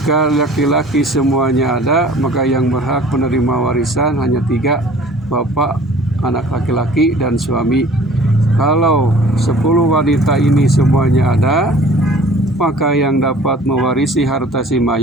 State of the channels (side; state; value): both; normal; correlation 0.49